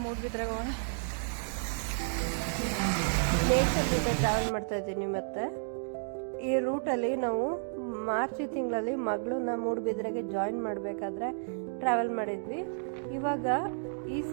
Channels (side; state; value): left; silent; digital silence